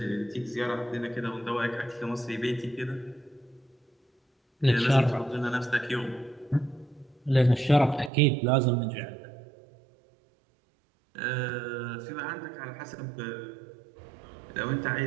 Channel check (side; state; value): left; drops out; at 8.1 s